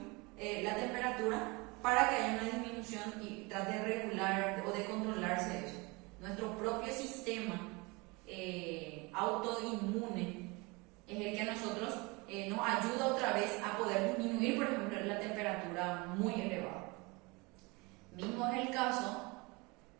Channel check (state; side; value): quieter; left; 26.3 dB